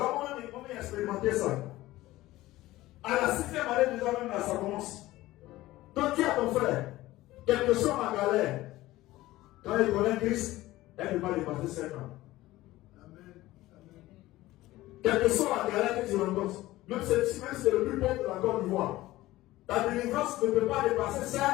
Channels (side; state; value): right; quieter; 17.1 dB